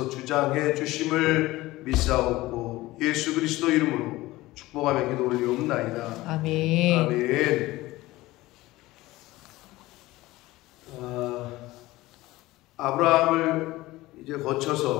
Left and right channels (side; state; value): right; quieter; 18.4 dB